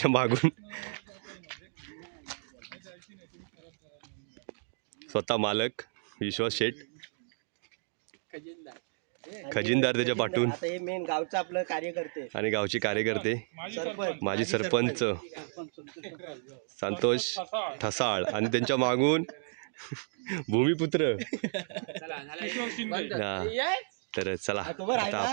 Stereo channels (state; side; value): silent; left; digital silence